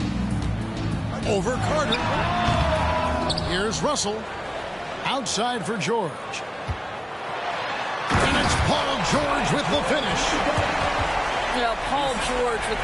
Over Carter. Here's Russell. Outside for George. And it's Paul George with the finish. You know, Paul George with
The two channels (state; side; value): identical; both; correlation 1.00